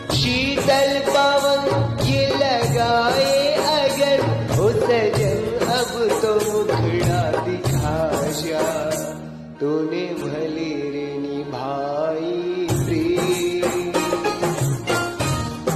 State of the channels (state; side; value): identical; both; correlation 1.00